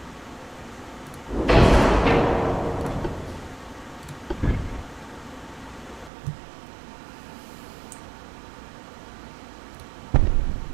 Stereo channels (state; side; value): drops out; left; at 6.1 s